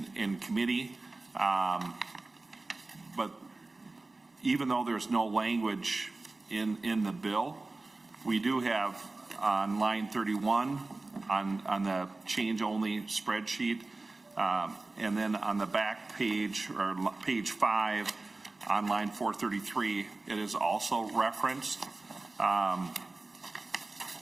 committee. But even though there's no language in the bill, we do have on line 31 on the change-only spreadsheet, and then on the back page, or page 5, on line 433, it is also referenced.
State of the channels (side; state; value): left; quieter; 3.3 dB